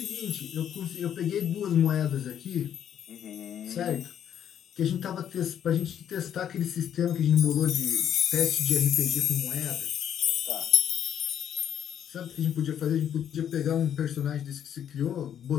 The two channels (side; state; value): right; quieter; 9.5 dB